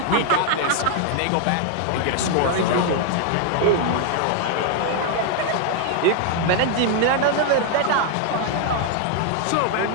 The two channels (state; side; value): different; both; correlation 0.00